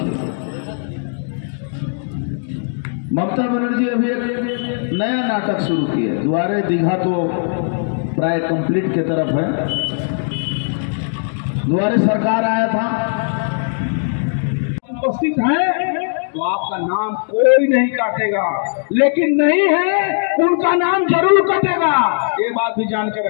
ममता बनर्जी अभी एक नया नाटक शुरू किया। द्वारे दीघा तो प्राय कंप्लीट की तरफ है। द्वारे सरकार आया था, उपस्थित हैं तो आपका नाम कोई नहीं काटेगा, लेकिन नहीं है उनका नाम जरूर कटेगा। ये बात भी जान के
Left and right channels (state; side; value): silent; right; digital silence